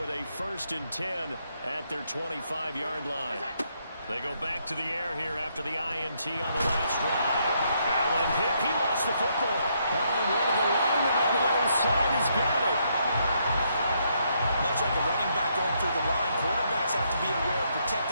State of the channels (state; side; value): inverted; both; correlation -0.75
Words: a 1st and 10 at their 25-yard line. They go back to the air here after the INT on the last drive. Allen hit. He lost the football. Allen, one of the linemen on the other side, has got it. Much like a running back going through the line, quarterbacks have to be aware of